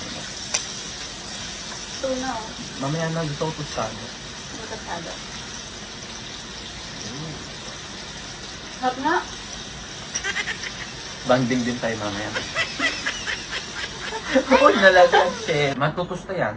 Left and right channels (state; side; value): identical; both; correlation 1.00